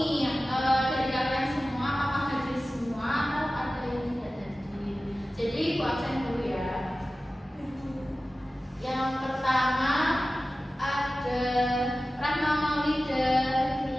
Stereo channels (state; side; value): normal; both; correlation 0.95